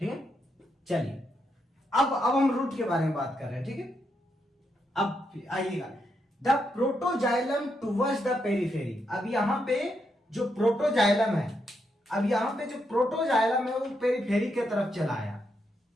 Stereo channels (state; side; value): normal; both; correlation 0.80